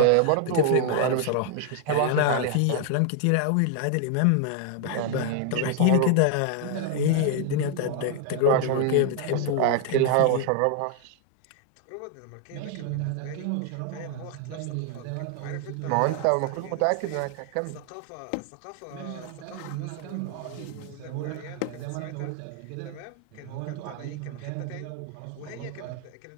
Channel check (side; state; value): both; different; correlation 0.00